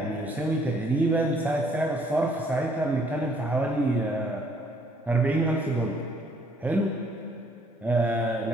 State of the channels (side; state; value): both; normal; correlation 0.64